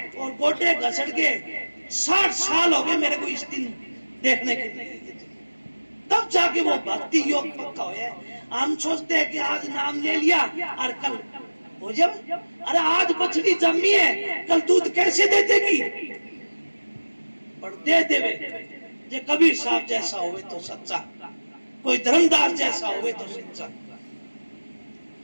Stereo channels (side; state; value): both; inverted; correlation -1.00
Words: और गोटे घसट गए। 60 साल हो गए मेरे को इस दिन देखने के लिए, तब जाके वो भक्ति योग पक्का है। हम सोचते हैं कि आज नाम ले लिया और कल हो जाए। अरे आज बछड़ी जमी है, कल दूध कैसे दे देगी? पर दे देवे। जे कबीर साहब जैसा होवे तो सच्चा, कोई धर्मदास जैसा होवे तो सच्चा,